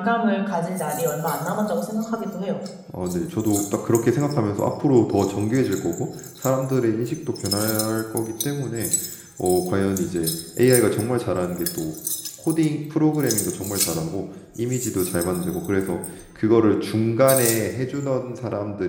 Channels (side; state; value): both; identical; correlation 1.00